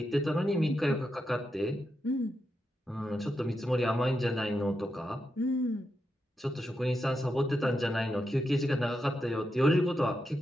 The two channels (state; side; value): normal; both; correlation 0.86